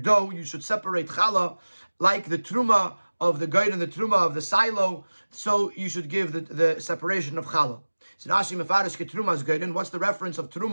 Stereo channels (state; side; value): inverted; both; correlation -1.00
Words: you should separate challah like the truma of the gerin and the truma of the silo. So you should give the separation of challah. So Rashi mefarish ke trumas gerin. What's the reference of